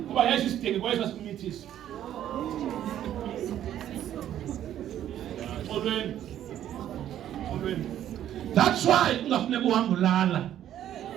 kuba yesu isidenge kwesa simithisa olweni that's why ungafuneka uhambe ulala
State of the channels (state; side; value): quieter; left; 11.3 dB